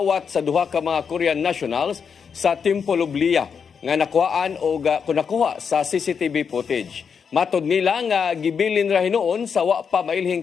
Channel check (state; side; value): quieter; right; 6.5 dB